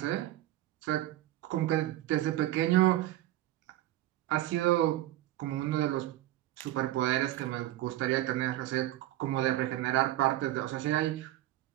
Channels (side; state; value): left; quieter; 14.9 dB